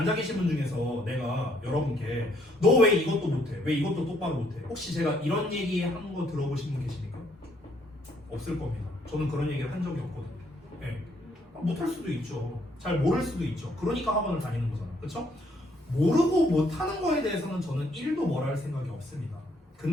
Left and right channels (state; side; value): normal; both; correlation 0.68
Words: 계신 분 중에서 내가 여러분께 너 왜 이것도 못해? 왜 이것도 똑바로 못해? 혹시 제가 이런 얘기 한 거 들어보신 분 계십니까? 없을 겁니다. 저는 그런 얘기를 한 적이 없거든요. 네. 못할 수도 있죠. 잘 모를 수도 있죠. 그러니까 학원을 다니는 거잖아. 그렇죠? 모르고 못하는 거에 대해서는 저는 1도 뭐라 할 생각이 없습니다.